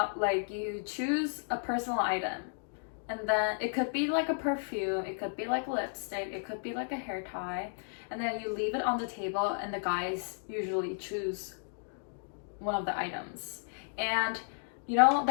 like you choose a personal item, and then it could be like a perfume, it could be like lipstick, it could be like a hair tie, and then you leave it on the table, and the guys usually choose one of the items. And you know,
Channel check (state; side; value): silent; right; digital silence